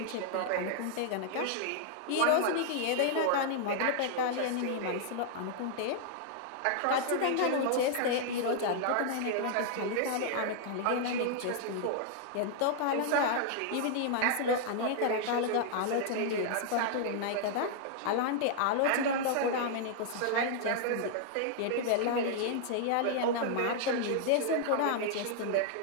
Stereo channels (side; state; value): both; different; correlation -0.01